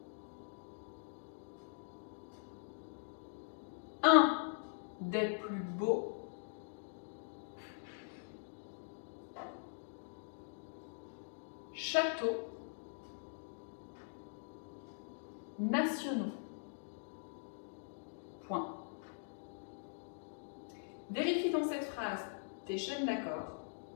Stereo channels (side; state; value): right; silent; digital silence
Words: un des plus beaux châteaux nationaux. Point. Vérifie dans cette phrase tes chaînes d'accords.